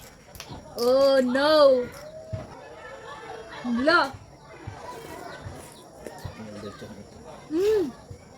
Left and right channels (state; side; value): identical; both; correlation 1.00